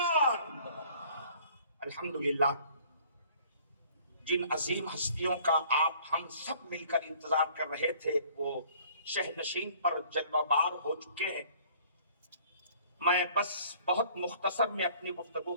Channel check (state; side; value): inverted; both; correlation -0.55